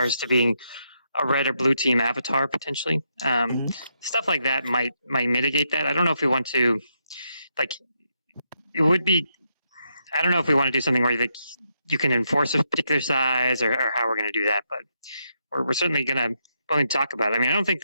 to being a red or blue team avatar potentially. Stuff like that might mitigate that. I don't know if we want to, it would be, I don't know if we want to do something where you can enforce a particular size or how we're going to do that, but we're certainly willing to talk about it. I mean, I don't think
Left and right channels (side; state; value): both; inverted; correlation -0.80